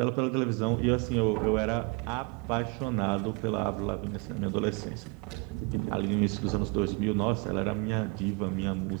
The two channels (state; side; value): quieter; left; 30.9 dB